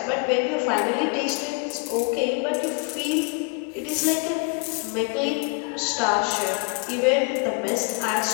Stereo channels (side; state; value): right; quieter; 34.4 dB